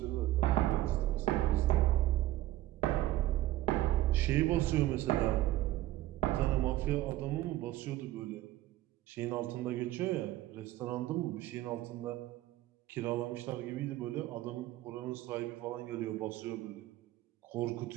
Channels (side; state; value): left; quieter; 15.4 dB